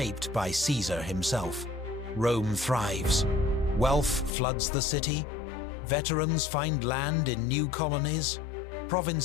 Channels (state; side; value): drops out; right; at 4.4 s